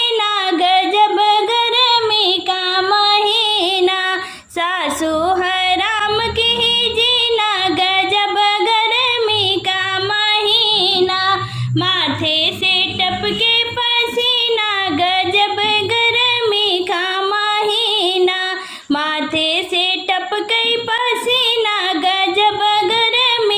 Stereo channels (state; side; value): identical; both; correlation 1.00